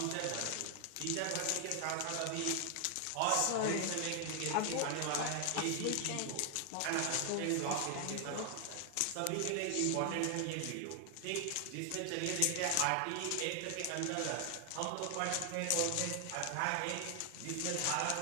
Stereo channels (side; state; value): both; different; correlation 0.00